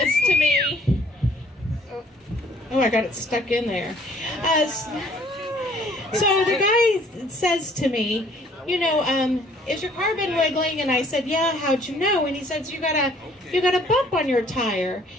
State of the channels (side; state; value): both; normal; correlation 0.59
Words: to me, oh, I got it stuck in there. So the guy says to me, you know, is your car been wiggling? And I said, yeah, how'd you know? And he says, you got a bump on your tire.